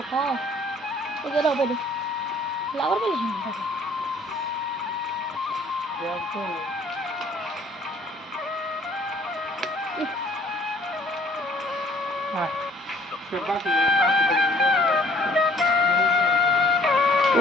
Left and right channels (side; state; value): both; normal; correlation 0.57